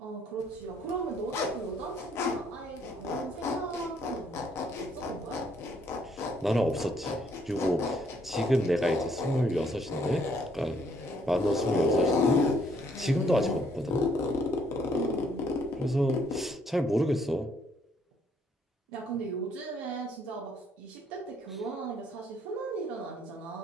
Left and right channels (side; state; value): both; normal; correlation 0.67